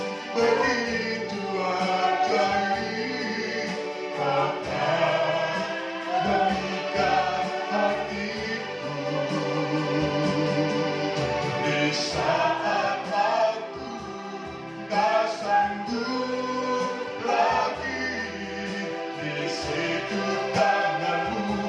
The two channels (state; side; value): identical; both; correlation 1.00